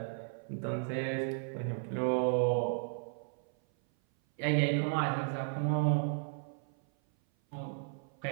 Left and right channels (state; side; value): silent; left; 55 dB below the other